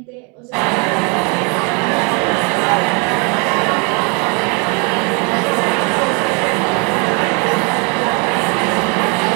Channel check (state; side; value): quieter; left; 33.0 dB